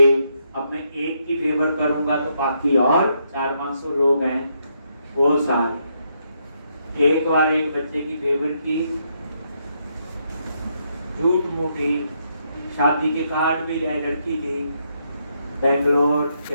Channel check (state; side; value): inverted; both; correlation -0.77